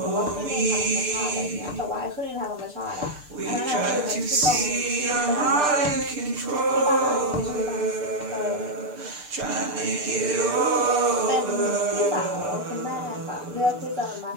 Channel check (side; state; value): left; late; 6.7 ms